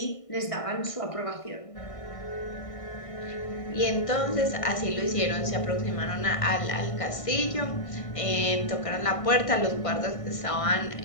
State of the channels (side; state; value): right; late; 1.5 ms